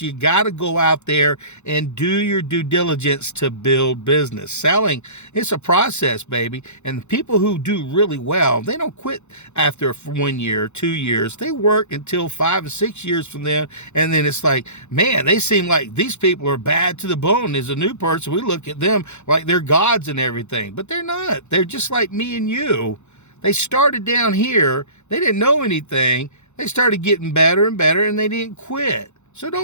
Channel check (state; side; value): late; right; 0.83 ms